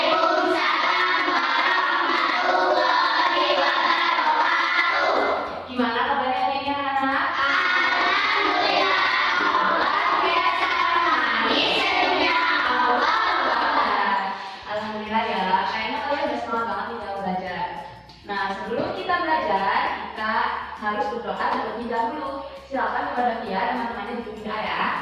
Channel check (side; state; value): both; identical; correlation 1.00